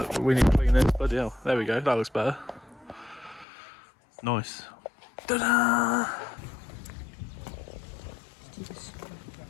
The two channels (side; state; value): right; drops out; at 3.5 s